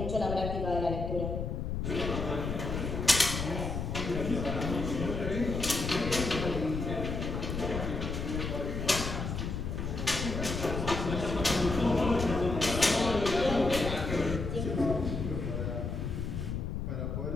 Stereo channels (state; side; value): noise; left; rumble, 3 dB below the sound